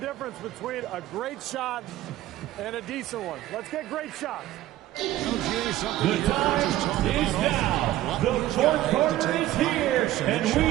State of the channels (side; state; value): left; quieter; 14.5 dB